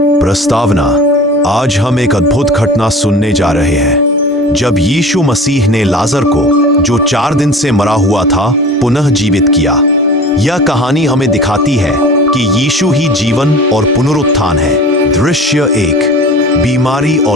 प्रस्तावना। आज हम एक अद्भुत घटना सुनने जा रहे हैं जब यीशु मसीह ने लाजर को, जो 4 दिन से मरा हुआ था, पुनः जीवित किया। यह कहानी हमें दिखाती है कि यीशु ही जीवन और पुनरुत्थान है। दृश्य 1। बीमारी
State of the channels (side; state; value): both; normal; correlation 0.39